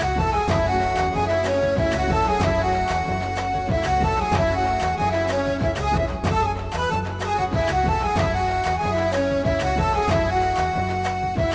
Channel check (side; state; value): both; identical; correlation 1.00